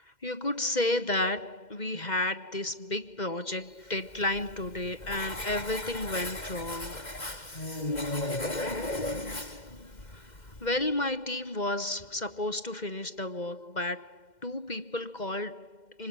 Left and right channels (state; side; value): late; right; 2.1 ms